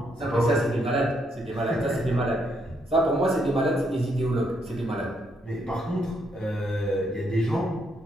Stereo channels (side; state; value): both; normal; correlation 0.75